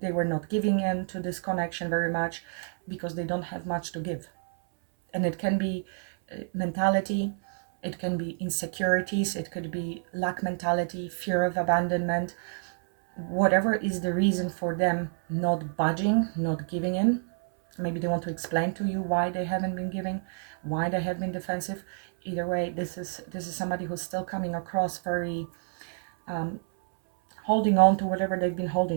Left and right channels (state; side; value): silent; left; 59 dB below the other